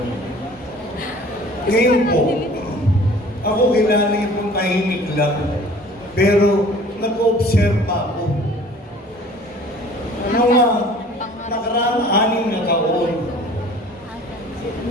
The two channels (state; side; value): normal; both; correlation 0.49